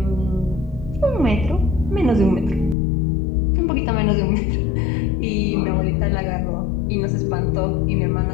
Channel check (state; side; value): drops out; right; at 2.8 s